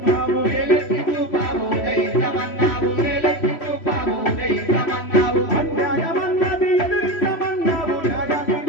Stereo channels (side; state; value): right; late; 3.1 ms